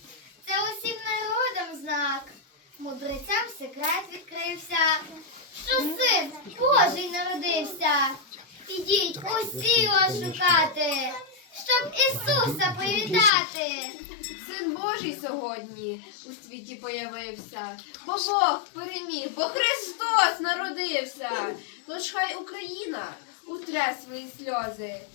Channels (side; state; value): right; drops out; at 13.3 s